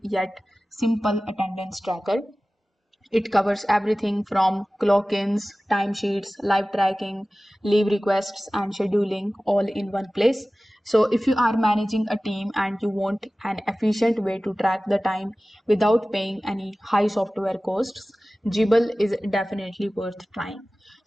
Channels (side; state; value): both; normal; correlation 0.97